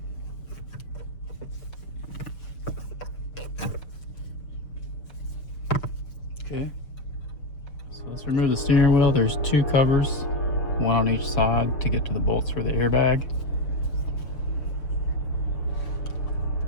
Okay, so let's remove the steering wheel. There's 2 covers, one on each side to get to the bolts for the airbag.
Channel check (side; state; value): right; late; 6.6 ms